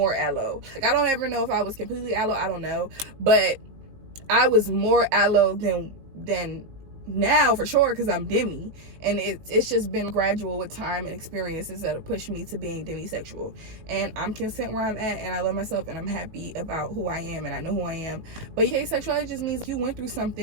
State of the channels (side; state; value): left; late; 18 ms